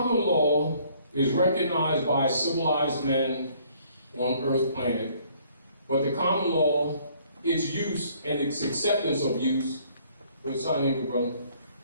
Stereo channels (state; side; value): inverted; both; correlation -0.62